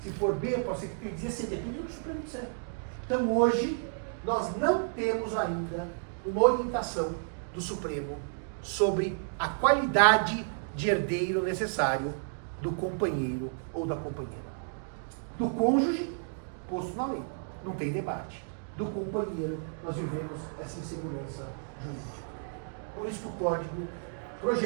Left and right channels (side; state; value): left; silent; digital silence